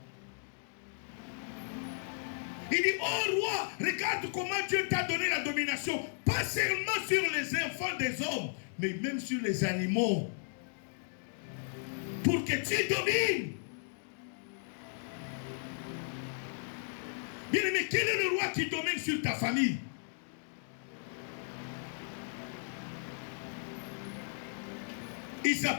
Il dit, oh roi, regarde comment Dieu t'a donné la domination, pas seulement sur les enfants des hommes, mais même sur les animaux. Pour que tu domines. Bien aimé, quel est le roi qui domine sur ta famille? Il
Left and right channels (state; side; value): silent; right; digital silence